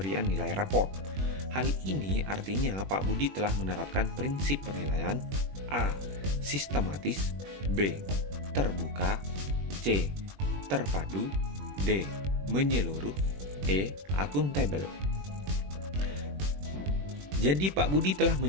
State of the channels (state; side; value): late; left; 21 ms